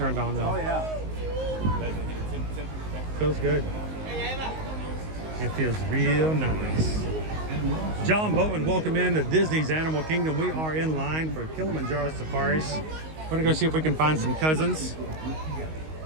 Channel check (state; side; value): late; left; 19 ms